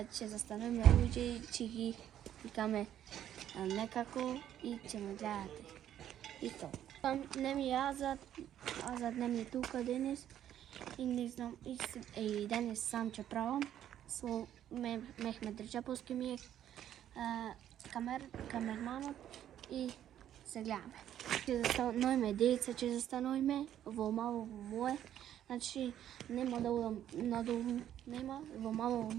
застануваме луѓе и ќе ги викаме некако и ќе ме гледате. И то. Не ми е Азад не ми е тука денес и не знам, и денес сам ќе правам. Со Мехмет Реджеповски ми е камерманот и се гледаме. Ќе застануваме деца, ќе застануваме во мало мое. Значи нема да удам надолу, нема, во мало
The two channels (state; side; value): quieter; left; 10.9 dB